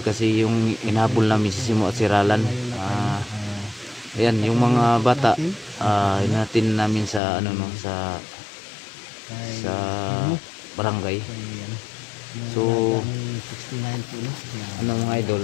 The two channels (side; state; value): right; drops out; at 7.2 s